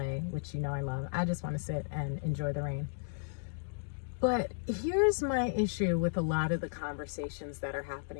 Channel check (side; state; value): right; silent; digital silence